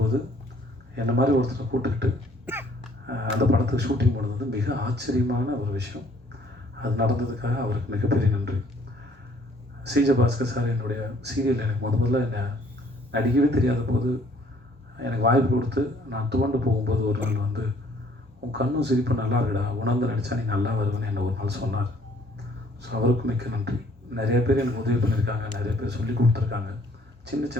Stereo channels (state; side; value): normal; both; correlation 0.60